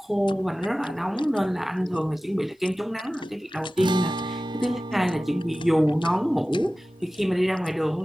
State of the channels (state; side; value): normal; both; correlation 0.96